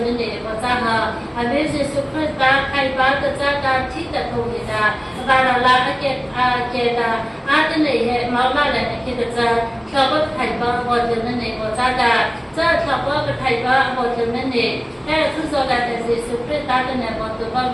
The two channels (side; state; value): both; identical; correlation 1.00